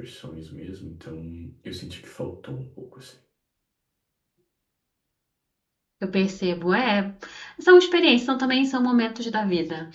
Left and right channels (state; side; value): identical; both; correlation 1.00